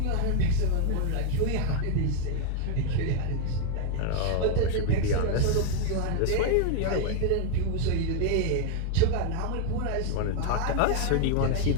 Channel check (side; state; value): both; different; correlation 0.00